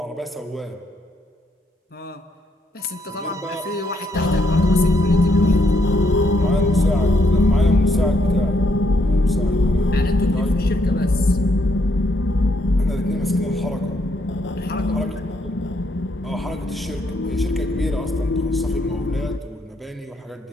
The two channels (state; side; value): normal; both; correlation 0.75